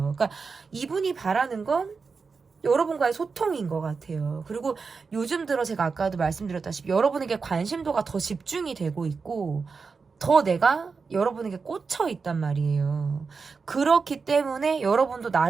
그러니까 이분이 바라는 건 여러분과의 소통인 것 같아요. 그리고 요즘 들어 제가 아까도 말씀드렸다시피 여러분에게 관심도가 더 집중이 되고 있고, 더 내가 여러분에게 꽂혀 있단 말이에요. 그렇기 때문에 여러분도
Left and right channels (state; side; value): quieter; left; 4.9 dB